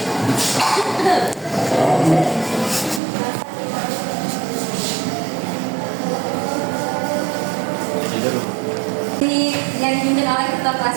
Ini yang dipimpin oleh ketua kelas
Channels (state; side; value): drops out; left; at 3.0 s